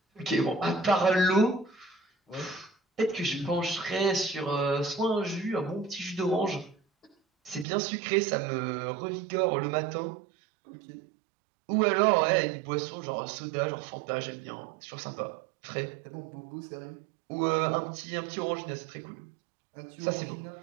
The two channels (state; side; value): drops out; left; at 7.7 s